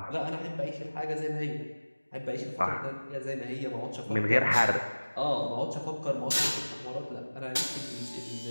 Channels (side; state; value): both; inverted; correlation -1.00